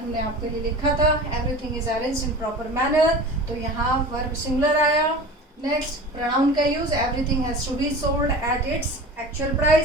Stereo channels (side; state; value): both; normal; correlation 0.36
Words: आपके लिए लिखा था, everything is arranged in proper manner, तो यहाँ वर्ब सिंगुलर आया। नेक्स्ट, प्रोनाउन का use, everything has to be sold at its actual